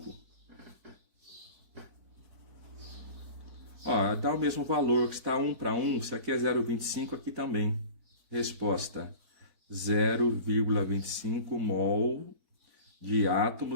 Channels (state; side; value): late; left; 4.5 ms